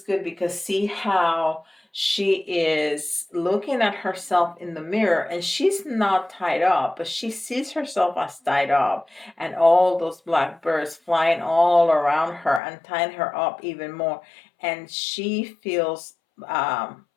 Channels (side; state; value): right; drops out; at 12.6 s